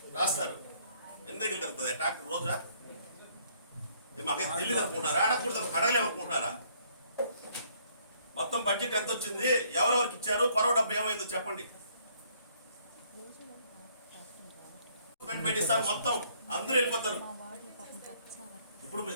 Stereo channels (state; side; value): inverted; both; correlation -0.65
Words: రాస్తారు. ఎన్ని దగ్గర తిరుగుతుంది ట్రాక్టర్ రోజా? మాకైతే తెలియదు అనుకుంటారా? అడగకూడదు అడగలేమనుకుంటున్నారా? మొత్తం బడ్జెట్ ఎంత వచ్చింది, ఎవరెవరికి ఇచ్చారు, కొరవ డబ్బు ఏమైందో చెప్పండి. పెట్టిస్తారు, మొత్తం అందరూ వెళ్ళిపోతారు. ఇప్పుడు